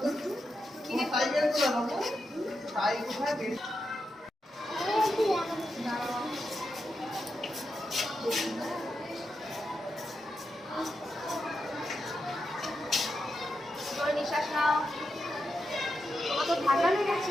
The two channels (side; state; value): both; normal; correlation 0.87